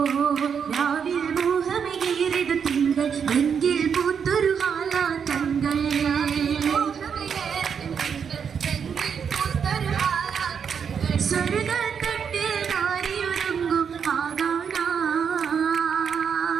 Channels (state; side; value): quieter; left; 7.0 dB